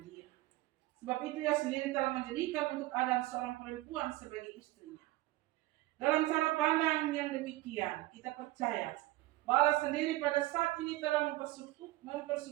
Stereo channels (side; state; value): left; quieter; 17.9 dB